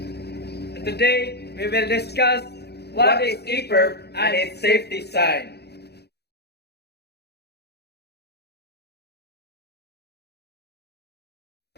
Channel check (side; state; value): right; late; 0.48 ms